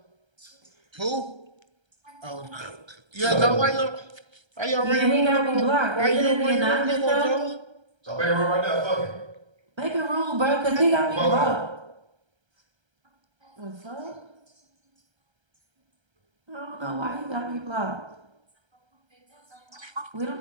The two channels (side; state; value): left; late; 1.3 ms